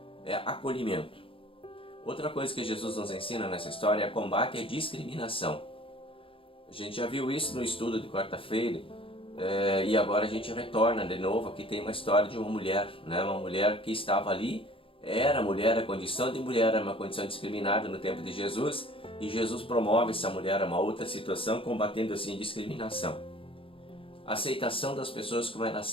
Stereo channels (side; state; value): right; late; 0.26 ms